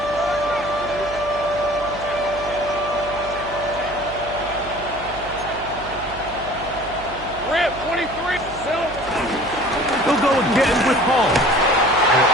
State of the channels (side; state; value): right; noise; hum, 15 dB below the sound